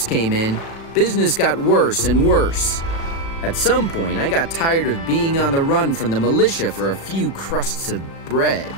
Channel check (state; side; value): late; right; 36 ms